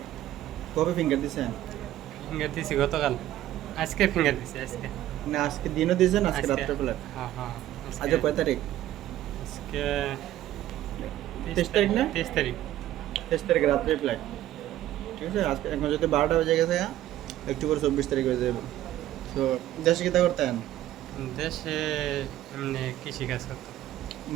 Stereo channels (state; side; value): quieter; left; 13.5 dB